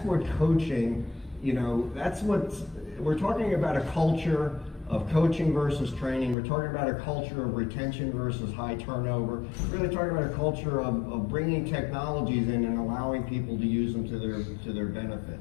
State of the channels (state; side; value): drops out; right; at 6.4 s